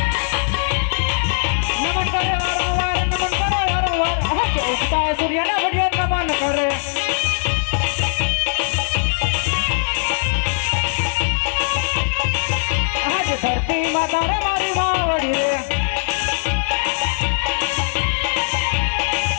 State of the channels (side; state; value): right; silent; digital silence